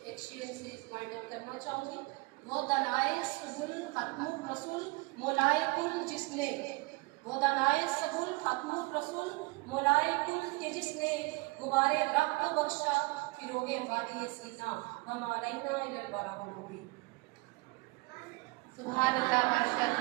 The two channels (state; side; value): quieter; left; 25.2 dB